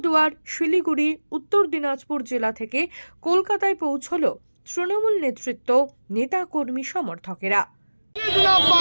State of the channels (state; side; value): inverted; both; correlation -1.00